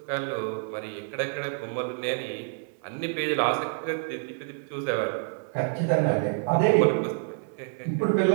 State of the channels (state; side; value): silent; left; 60 dB below the other